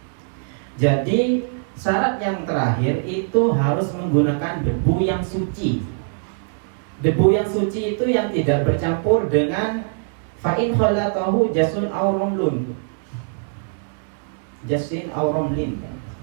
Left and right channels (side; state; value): left; silent; 64 dB below the other